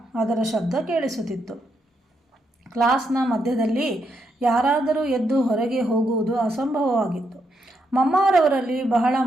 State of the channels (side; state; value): both; normal; correlation 0.79